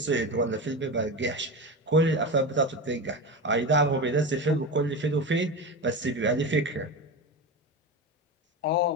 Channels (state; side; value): normal; both; correlation 0.22